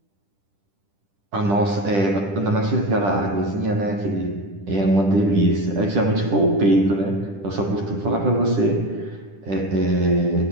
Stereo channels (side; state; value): left; late; 10 ms